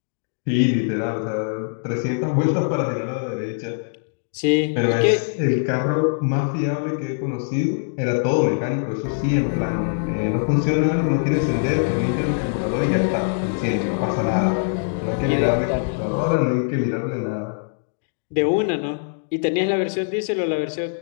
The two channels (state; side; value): silent; right; digital silence